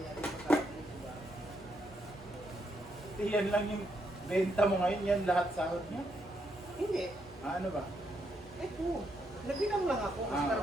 natin masahod, diba? Yan lang yung benta mo ngayon, yan lahat sahod niya. Hindi. Ano ba? Ito. Nagbilang lang ako kasi Ah. para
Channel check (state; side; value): normal; both; correlation 0.78